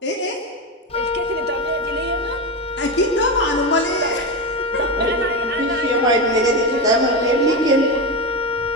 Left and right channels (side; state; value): both; normal; correlation 0.16